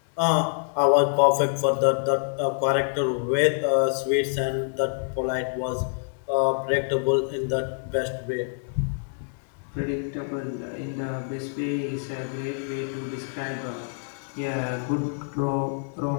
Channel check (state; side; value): silent; right; digital silence